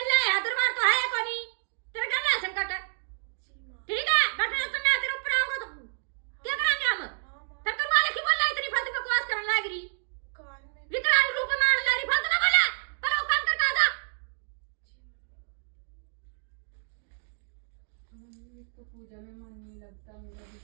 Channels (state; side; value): silent; left; digital silence